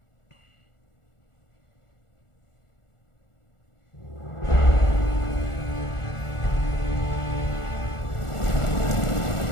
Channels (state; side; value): late; right; 1.4 ms